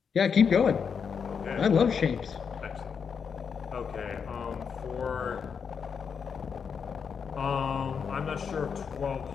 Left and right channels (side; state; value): right; quieter; 6.5 dB